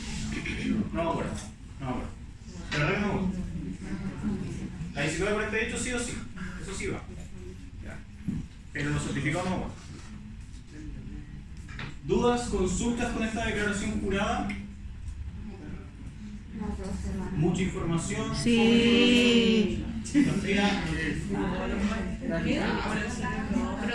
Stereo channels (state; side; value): identical; both; correlation 1.00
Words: No me acuerdo. De verdad que no me acuerdo. La 1948 sí o sí. Eso sí va. Ya. Pero los certificados no me acuerdo. ¿Dudas, consultas con esta declaración jurada? Mucha información. Sí. Sofía, ¿quién la